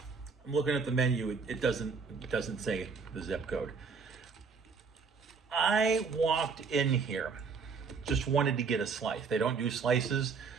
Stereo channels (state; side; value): quieter; left; 5.2 dB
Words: I'm looking at the menu. It doesn't say the zip code. I walked in here, just wanted to get a slice. They don't do slices,